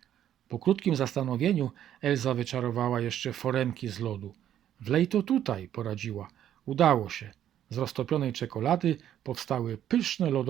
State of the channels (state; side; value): quieter; left; 10.9 dB